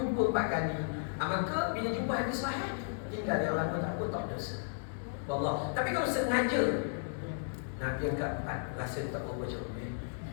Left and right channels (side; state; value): right; silent; digital silence